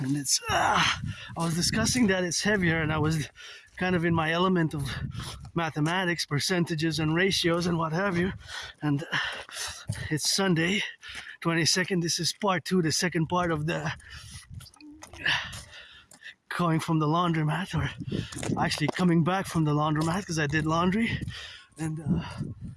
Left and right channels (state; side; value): identical; both; correlation 1.00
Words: it's I was discussing that it's heavier, and I was kind of in my element of mathematics, percentages and ratios and what have you. And it's Sunday 22nd. This is part two, the second part of the going from the laundromat, or actually coming back from the laundromat, because I did laundry. And